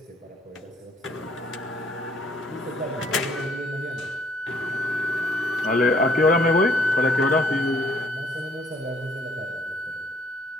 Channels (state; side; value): normal; both; correlation 0.63